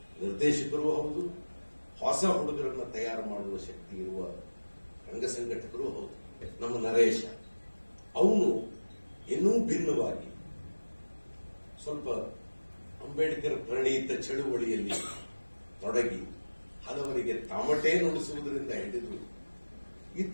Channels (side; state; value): both; inverted; correlation -1.00